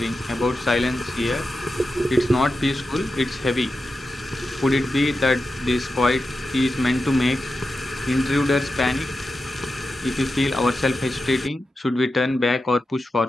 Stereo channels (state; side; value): normal; both; correlation 0.90